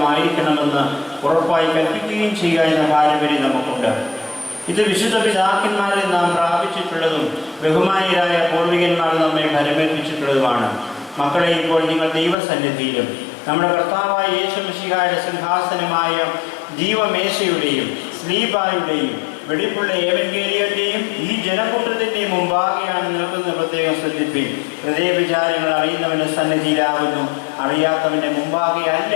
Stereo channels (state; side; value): drops out; right; at 12.4 s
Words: ഉറപ്പായി കൽപ്പിക്കുകയും ചെയ്യുക എന്ന പാരമ്പര്യം നമുക്കുണ്ട്. ഇത് വിശുദ്ധ പിതാക്കന്മാരിൽ നാം പ്രാപിച്ചിട്ടുള്ളതും ബഹുമാനീയരായ പൂർവികന്മാർ നമ്മെ ഫലമേൽപ്പിച്ചിട്ടുള്ളതുമാണ്. മക്കളെ, ഇപ്പോൾ നിങ്ങൾ ദൈവസന്നിധിയിലും നമ്മുടെ കർത്താവായ യേശു മിശിഹായുടെ സിംഹാസനമായ ജീവമേശയുടെയും സ്ലീബായുടെയും വെടിപ്പുള്ള ഏവൻഗേലിയന്റെയും ഈ ജനക്കൂട്ടത്തിൻ്റെയും മുമ്പാകെയാണ് നിൽക്കുന്നത്. പ്രത്യേകം ശ്രദ്ധിപ്പിൻ. ഹൃദയവിചാരങ്ങൾ അറിയുന്നവൻ്റെ സന്നിധിയിലാകുന്നു, അറിയാത്തവൻ്റെ മുമ്പാകെയല്ല